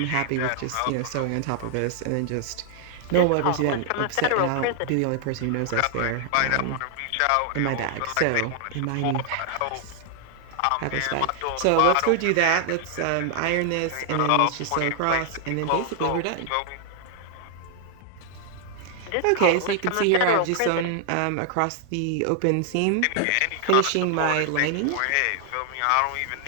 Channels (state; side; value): different; both; correlation 0.00